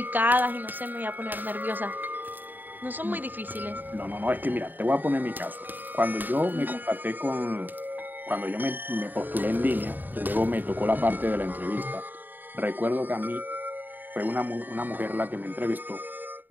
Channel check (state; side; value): late; left; 0.089 ms